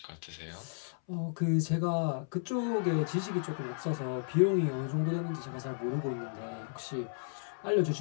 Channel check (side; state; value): right; silent; 55 dB below the other